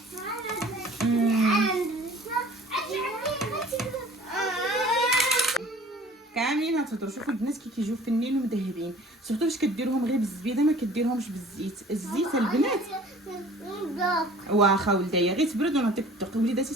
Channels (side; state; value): both; normal; correlation 0.48